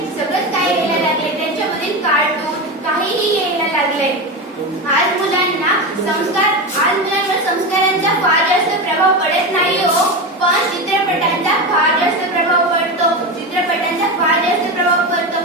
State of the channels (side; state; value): both; normal; correlation 0.19